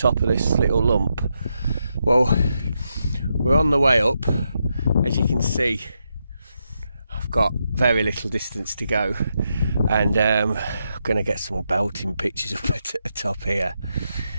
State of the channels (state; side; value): inverted; both; correlation -0.83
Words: of this little lump. Well, we're on the way up. As you can see, I've got very little distance to go, and I'm going to get some belting pictures up at the top here.